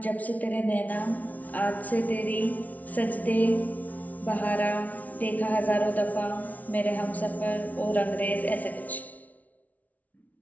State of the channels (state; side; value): late; right; 0.072 ms